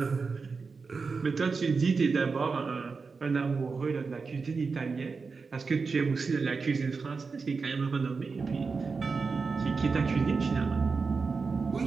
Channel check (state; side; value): quieter; left; 4.7 dB